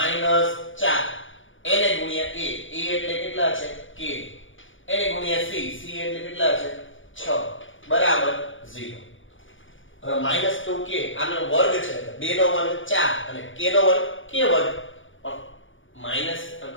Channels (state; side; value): late; right; 0.56 ms